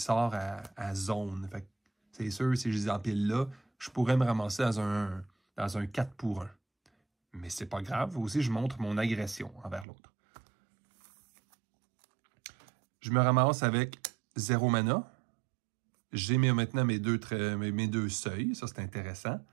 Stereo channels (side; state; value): left; drops out; at 9.9 s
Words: à zone. C'est sûr, si je les empile là, je pourrais me ramasser dans un 4 pour 1. Mais c'est pas grave. Aussi, je montre mon agression envers l'autre. Je me ramasse avec 0 mana. J'ai maintenant mes deux seuils. Ça, c'est intéressant.